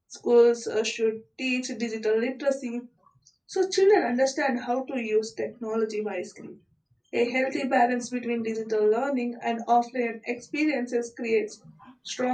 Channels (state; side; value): identical; both; correlation 1.00